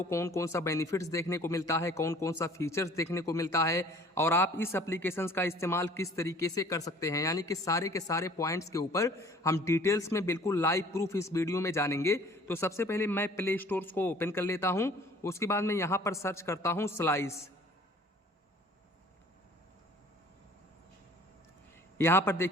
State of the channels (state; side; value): normal; both; correlation 0.52